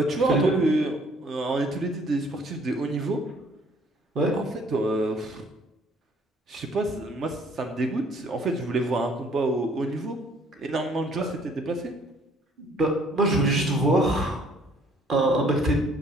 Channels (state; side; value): normal; both; correlation 0.60